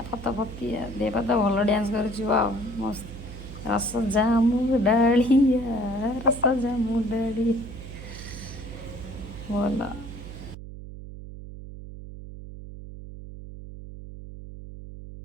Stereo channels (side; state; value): right; noise; hum, 12 dB below the sound